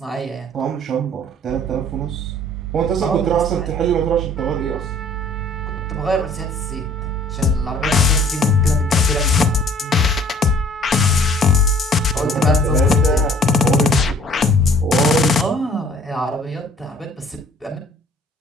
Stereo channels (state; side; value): normal; both; correlation 0.54